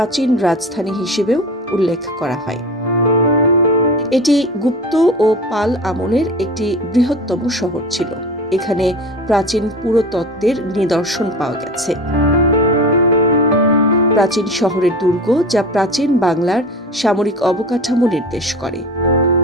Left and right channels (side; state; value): both; normal; correlation 0.33